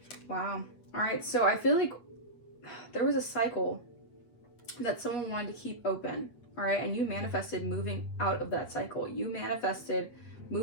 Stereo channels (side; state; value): right; late; 8.5 ms